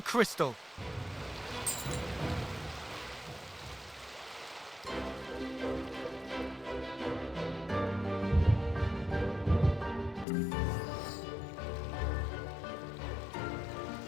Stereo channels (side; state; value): right; drops out; at 10.2 s